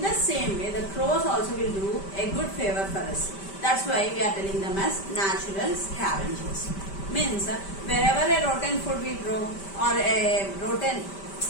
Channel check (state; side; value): late; right; 5.1 ms